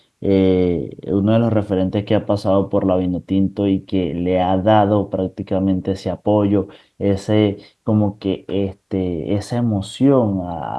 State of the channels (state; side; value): identical; both; correlation 1.00